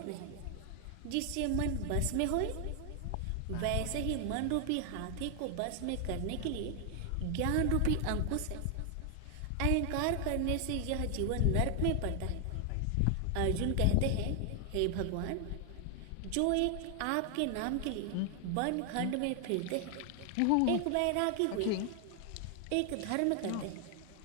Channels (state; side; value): different; both; correlation 0.00